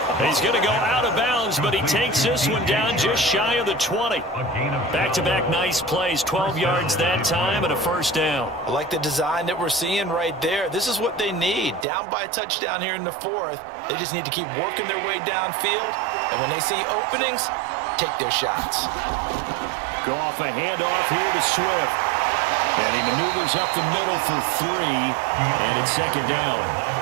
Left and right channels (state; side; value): drops out; left; at 11.9 s